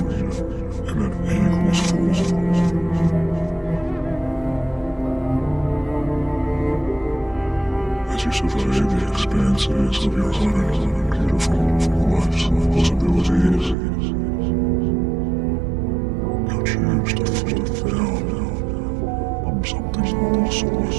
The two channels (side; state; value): left; drops out; at 13.8 s